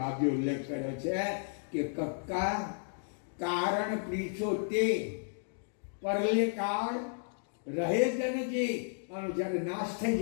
ઉલ્લેખ કર્યો છે કે કક્કા કારણ પ્રીછો તે પરલે કાળ રહે જન જે. આનો જ્યારે નાશ થઈ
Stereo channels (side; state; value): right; silent; digital silence